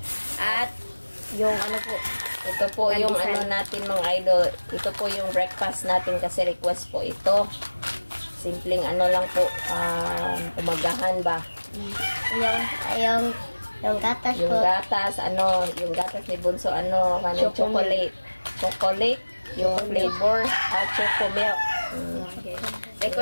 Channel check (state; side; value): inverted; both; correlation -1.00